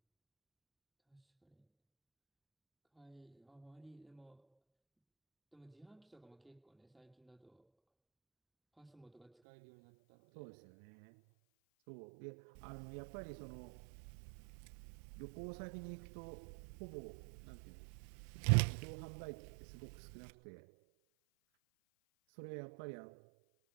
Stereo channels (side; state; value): left; drops out; at 9.3 s